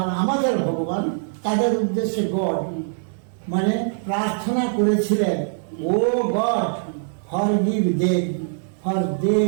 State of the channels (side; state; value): left; silent; 64 dB below the other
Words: আমাদের ভগবান, তাদের উদ্দেশ্যে গড মানে প্রার্থনা করেছিলেন, O God forgive them for they